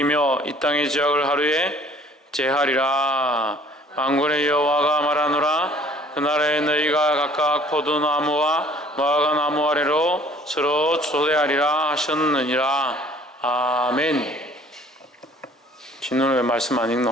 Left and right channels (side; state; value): both; normal; correlation 0.54